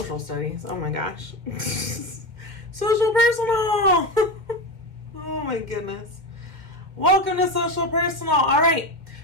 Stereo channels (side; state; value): left; late; 2.0 ms